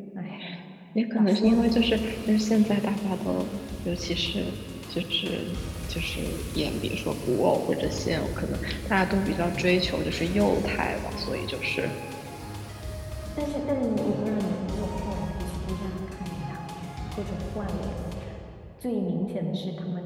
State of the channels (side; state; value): both; identical; correlation 1.00